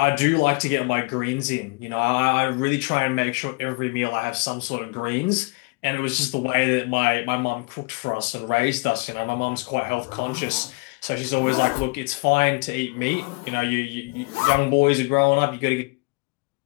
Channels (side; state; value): right; quieter; 29.3 dB